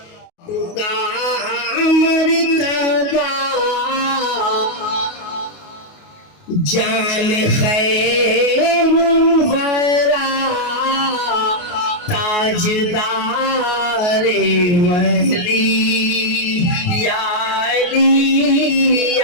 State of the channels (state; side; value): late; right; 28 ms